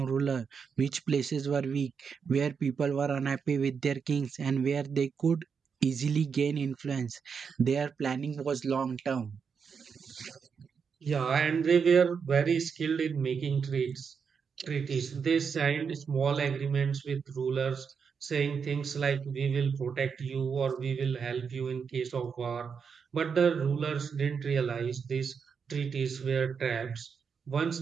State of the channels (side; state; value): left; quieter; 6.2 dB